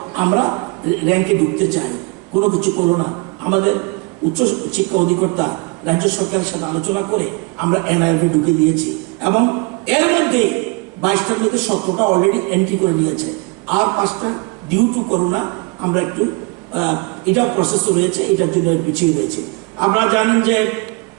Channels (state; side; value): quieter; left; 29.1 dB